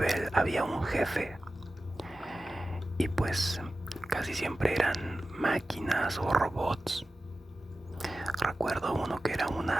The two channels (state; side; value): normal; both; correlation 0.94